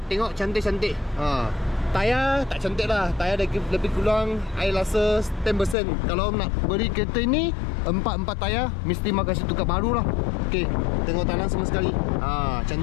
tengok cantik-cantik. Tayar tak cantik lah. Tayar lebih kurang I rasa 10%. Kalau nak beli kereta ini 4 tayar mesti mak kasih tukar baru lah. Okay, tengok tangan sama sekali.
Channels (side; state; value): right; drops out; at 5.8 s